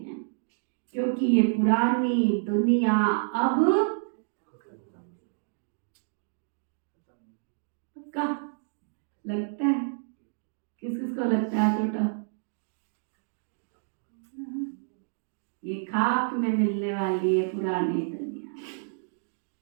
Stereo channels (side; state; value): left; silent; digital silence